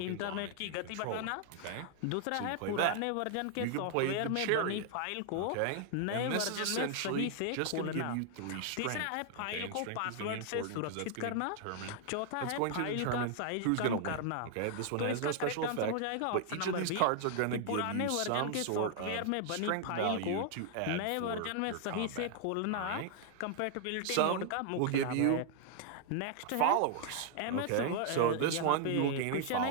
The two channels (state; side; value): different; both; correlation 0.00